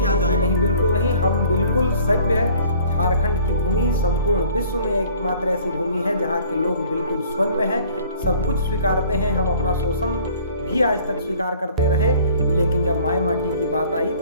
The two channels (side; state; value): both; inverted; correlation -0.52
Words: जाएगा? नहीं, बिल्कुल नहीं। हम बिल्कुल सभ्य है। झारखंड की भूमि संपूर्ण विश्व में एकमात्र ऐसी भूमि है जहाँ के लोग बिल्कुल सौम्य हैं, सब कुछ स्वीकारते हैं। हम अपना शोषण भी आज तक स्वीकार करते रहे, लेकिन जब माय माटी की बात आई